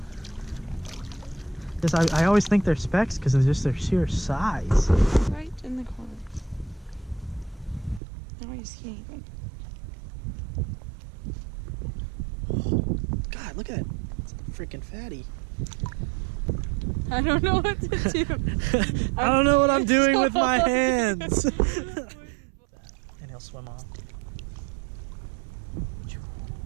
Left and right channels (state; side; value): drops out; left; at 8.0 s